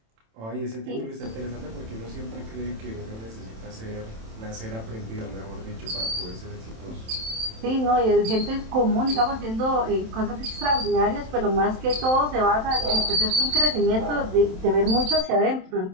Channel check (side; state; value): left; late; 27 ms